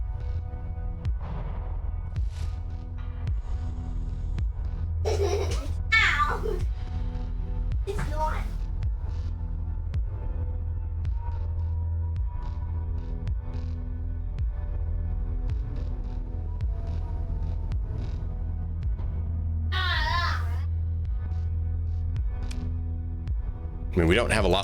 I mean, we don't have a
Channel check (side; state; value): both; identical; correlation 1.00